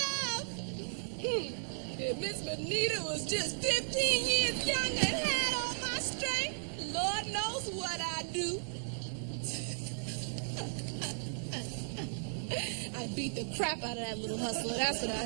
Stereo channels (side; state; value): left; silent; digital silence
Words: love. If Miss Benita was just 15 years younger and had all my strength, Lord knows what I'd do. I'd beat the crap out of that little hustler. That's what